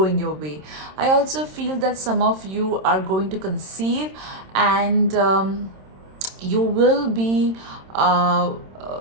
your way. I also feel that some of you are going to conceive, and you will be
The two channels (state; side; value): late; left; 26 ms